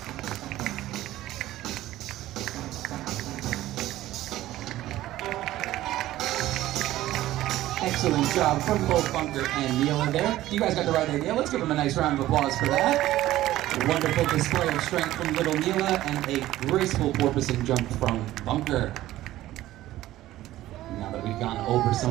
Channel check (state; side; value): quieter; left; 15.1 dB